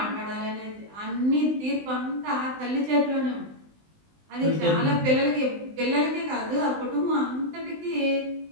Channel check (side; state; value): left; late; 20 ms